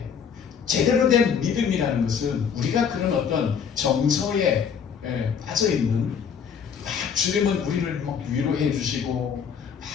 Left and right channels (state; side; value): quieter; right; 7.1 dB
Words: 제대로 된 믿음이라는 것은 우리가 그런 어떤 정서에 빠져있는, 막 주님은 우리를 막 위로해 주시고 막